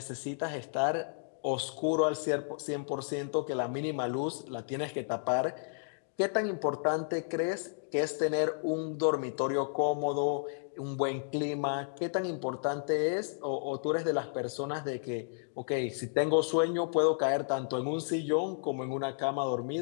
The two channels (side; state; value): right; silent; digital silence